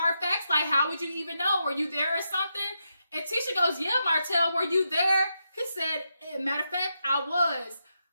facts? Like, how would you even know? Were you there or something? And Tisha goes, yeah, Martell, were you there? He said, matter of fact, I was.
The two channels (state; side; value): inverted; both; correlation -0.84